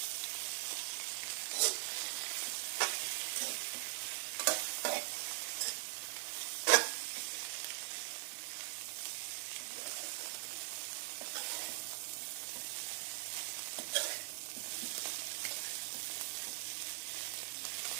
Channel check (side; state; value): left; silent; digital silence